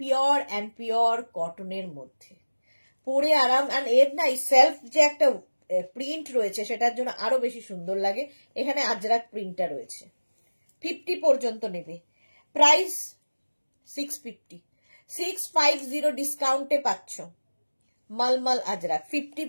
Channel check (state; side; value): inverted; both; correlation -1.00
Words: অ্যান্ড পিওর কটনের মধ্যে, পরে আরাম। আর এর না সেলফ যে একটা প্রিন্ট রয়েছে, সেটার জন্য আরো বেশি সুন্দর লাগে। এখানে আজরাক প্রিন্টটা রয়েছে। 50 পর্যন্ত নেবে, প্রাইস 650, 650 ডিসকাউন্টে পাচ্ছ মলমল আজরাক। 50